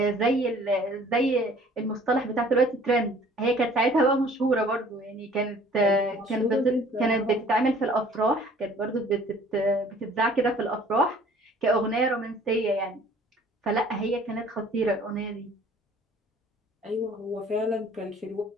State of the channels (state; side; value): normal; both; correlation 0.53